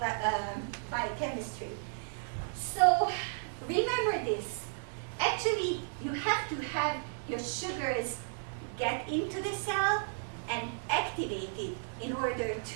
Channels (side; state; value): left; silent; 55 dB below the other